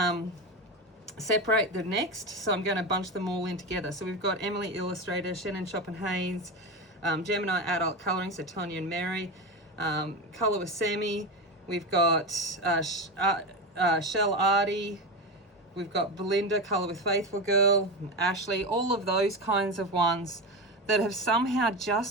separate the next, so I'm going to bunch them all in together. So we've got Emily Illustrator, Shannon Chopin-Hayes, Gemini Adult Colouring, so Tonya and Mary, Colour with Sammy, we've got Shell Artie, we've got Belinda, Colour with Faithful Girl, Ashley, all of those kinds of ones that have somehow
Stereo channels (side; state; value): both; normal; correlation 0.19